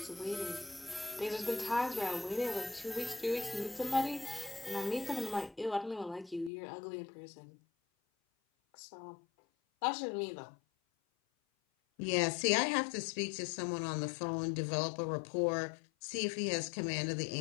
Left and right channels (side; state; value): right; drops out; at 6.5 s